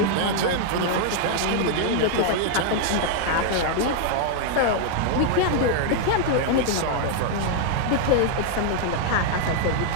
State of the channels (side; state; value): both; different; correlation 0.00